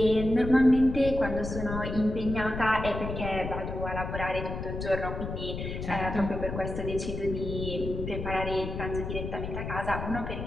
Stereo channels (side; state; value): left; noise; rumble, 6 dB below the sound